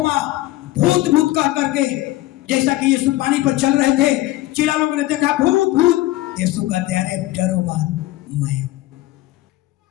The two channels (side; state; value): right; quieter; 17.0 dB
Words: भूत भूत कह करके, जैसा कि यीशु पानी पर चल रहे थे, चिल्ला लोगों ने देखा भूत भूत, यीशु कहते अरे डरो मत, मैं।